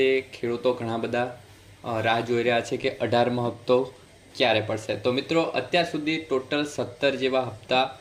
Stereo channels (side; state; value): both; identical; correlation 1.00